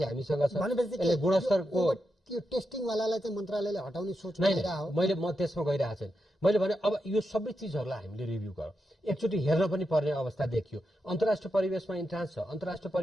हामीसँग छ। यसले गुणस्तरको त्यो टेस्टिङवालालाई चाहिँ मन्त्रालयले हटाउने सोच हो, म त्यसमा गइरहेको छैन। मैले भने अब यो सबै चिजहरूलाई हामीले रिभ्यू गरौँ, एकचोटि हेर्न पनि पर्ने अवस्था देखियो। अन्तर्राष्ट्रिय परिवेशमा इन्ट्रान्स छ, अन्तर्राष्ट्रिय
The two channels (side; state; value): both; normal; correlation 0.86